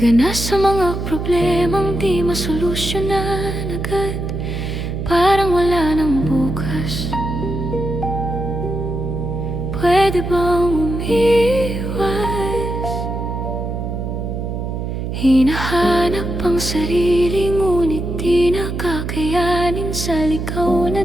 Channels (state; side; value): noise; right; hum, 4 dB below the sound